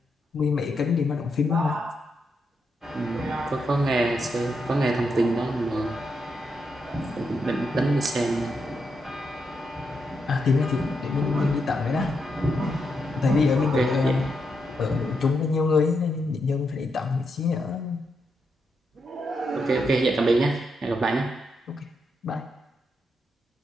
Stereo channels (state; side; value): normal; both; correlation 0.82